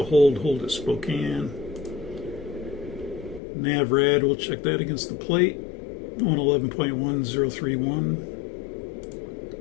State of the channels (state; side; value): drops out; right; at 3.4 s